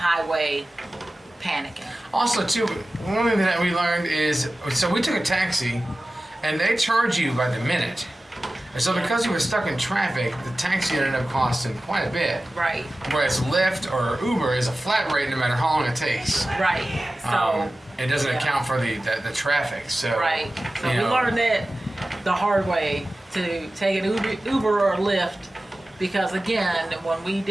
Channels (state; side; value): normal; both; correlation 0.96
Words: panicking. Also, too, one thing that we learned is, so we took a taxi, and they charge you by the minute. And so because we were stuck in traffic, the taxi ended up costing quite a bit. Right. Whereas Lyft or Uber is a flat rate no matter how long it takes. Right. So it doesn't account for the traffic. So right. So we learned that the hard way, to take an Uber or Lyft, because again, when we